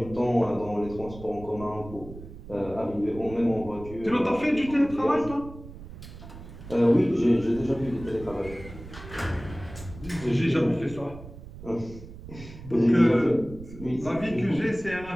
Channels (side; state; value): right; noise; rumble, 15 dB below the sound